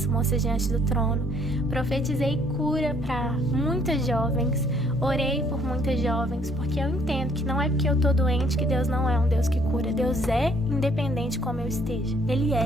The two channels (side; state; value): both; normal; correlation 0.63